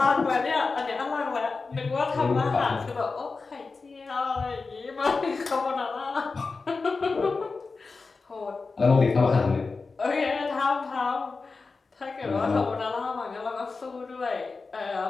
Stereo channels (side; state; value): right; quieter; 4.2 dB